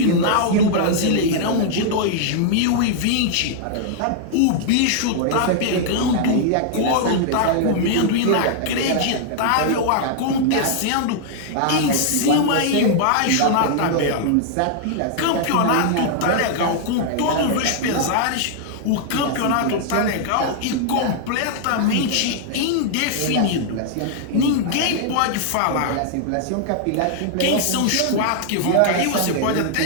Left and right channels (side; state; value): both; different; correlation -0.01